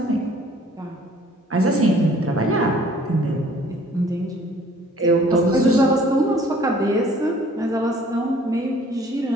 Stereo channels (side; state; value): both; normal; correlation 0.55